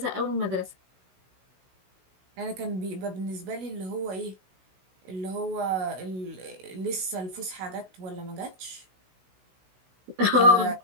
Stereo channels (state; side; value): late; left; 16 ms